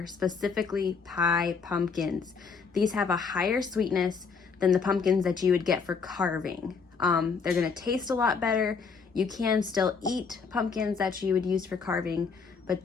specifically pie pumpkins. These have a higher sweetness than the pumpkins that you would get for carving. They're going to taste a lot better. You can still eat pumpkins that you would use for carving, but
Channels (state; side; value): quieter; right; 5.3 dB